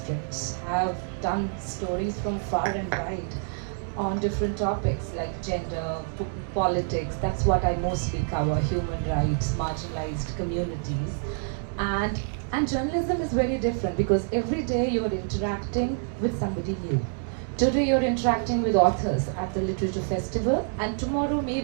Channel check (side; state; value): left; silent; 60 dB below the other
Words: I've done stories from far and wide on different topics like gender, politics. That's what I mostly cover, human rights, marginalized communities. And journalism is very different because every day you're interacting with somebody new. Today you're interacting with authors at the literature festival, and tomorrow